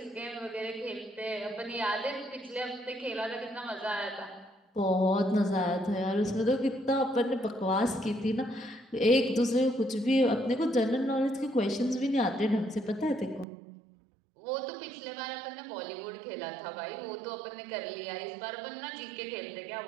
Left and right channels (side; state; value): left; drops out; at 13.5 s